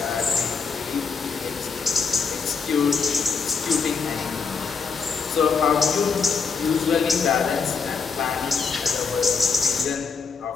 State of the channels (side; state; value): right; quieter; 5.4 dB